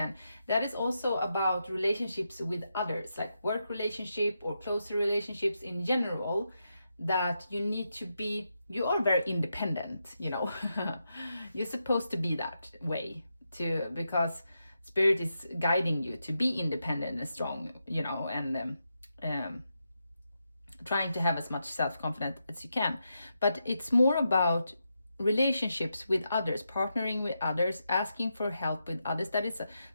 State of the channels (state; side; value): inverted; both; correlation -0.85